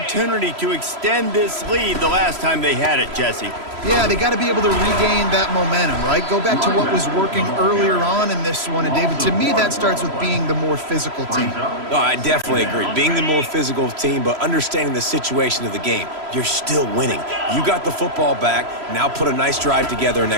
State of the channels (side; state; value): left; late; 3.0 ms